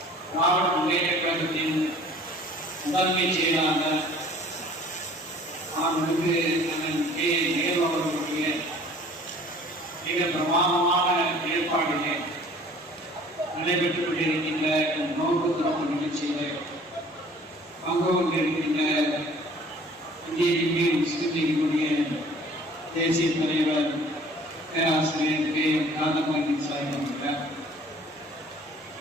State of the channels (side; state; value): both; normal; correlation 0.51